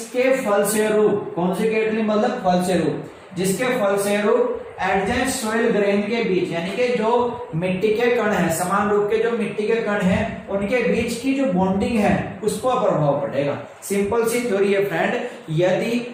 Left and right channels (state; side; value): identical; both; correlation 1.00